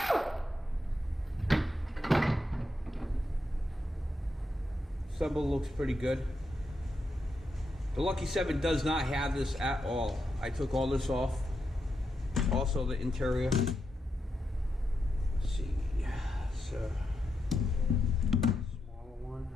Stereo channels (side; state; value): both; normal; correlation 0.84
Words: Assemble looks pretty good. The Lucky 7 does not have this at all. I took all this off. Also the interior. Let's see. So smaller one.